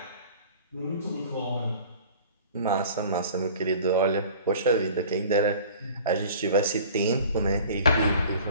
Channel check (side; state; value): both; inverted; correlation -0.45